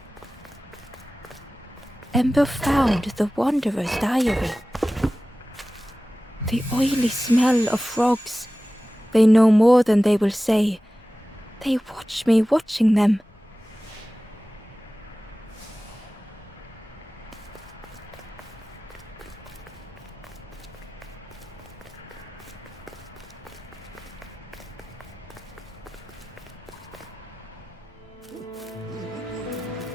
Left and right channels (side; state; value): both; normal; correlation 0.96